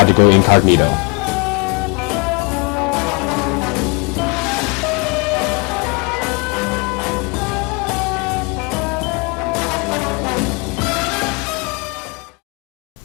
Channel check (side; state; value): right; quieter; 31.4 dB